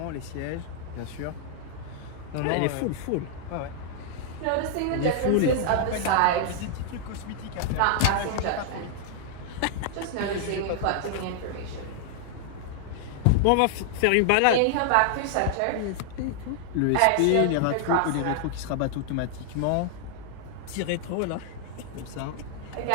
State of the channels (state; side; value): different; both; correlation 0.00